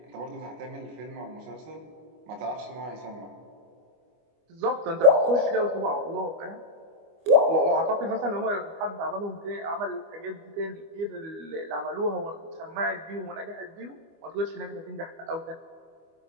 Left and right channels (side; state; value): left; late; 25 ms